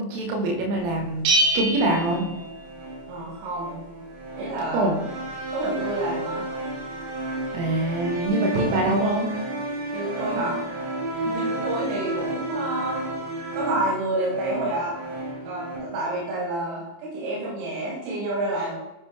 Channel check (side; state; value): left; late; 29 ms